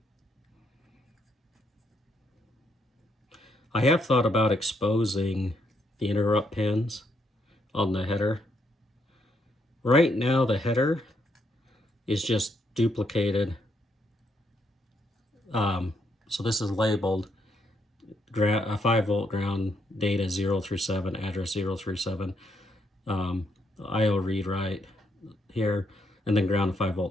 I have thought about exposing the interrupt pins on the header. Right now the header is just duplicated. So this is labeled 5-volt ground, data 0 through 7, address 0 through 7, IO read write here, and then ground 5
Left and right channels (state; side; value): normal; both; correlation 0.75